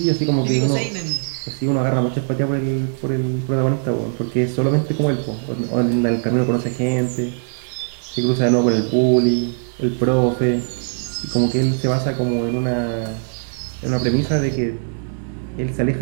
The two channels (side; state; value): left; silent; digital silence